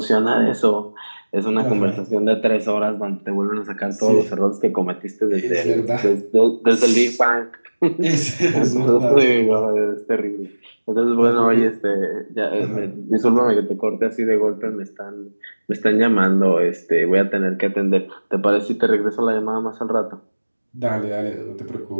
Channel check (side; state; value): both; inverted; correlation -1.00